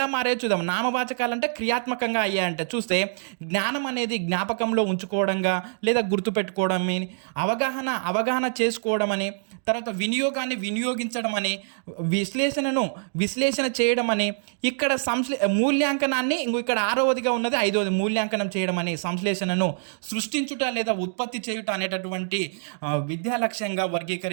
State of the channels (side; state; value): left; silent; digital silence